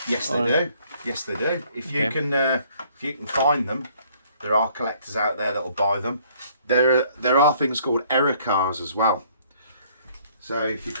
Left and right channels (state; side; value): inverted; both; correlation -0.61